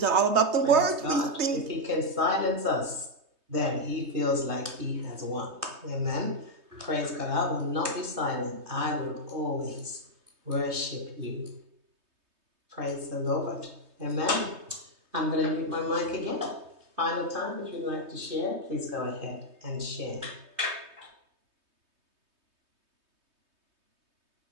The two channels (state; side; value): late; left; 3.2 ms